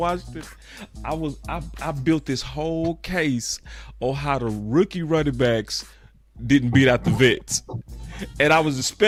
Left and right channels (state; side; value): identical; both; correlation 1.00